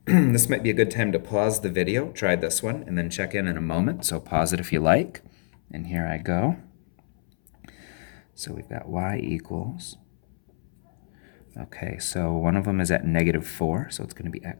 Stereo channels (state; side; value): silent; right; 61 dB below the other